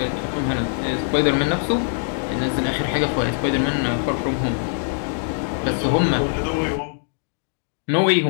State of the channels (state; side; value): silent; right; digital silence